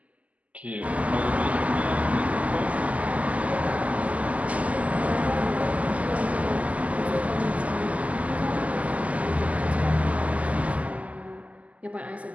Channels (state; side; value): late; left; 0.071 ms